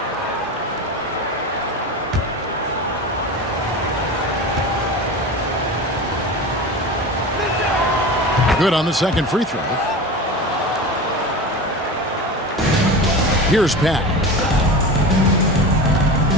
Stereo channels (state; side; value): normal; both; correlation 0.29